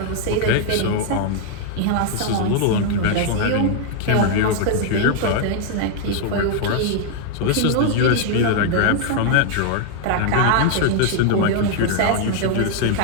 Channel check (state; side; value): different; both; correlation 0.00